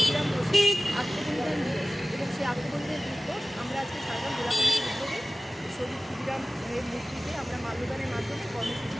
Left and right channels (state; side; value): normal; both; correlation 0.97